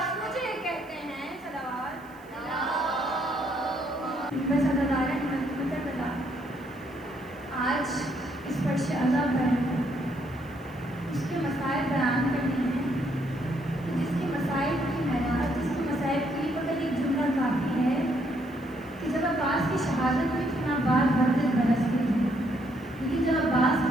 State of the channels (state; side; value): noise; right; hiss, 29 dB below the sound